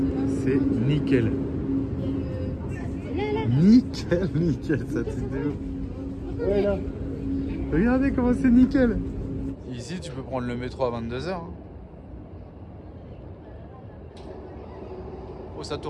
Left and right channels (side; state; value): both; identical; correlation 1.00